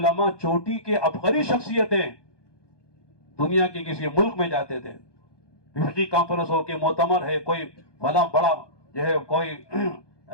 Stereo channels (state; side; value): late; right; 1.2 ms